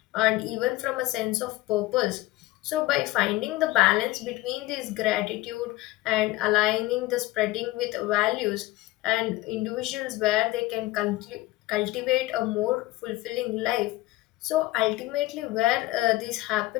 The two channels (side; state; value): right; quieter; 18.5 dB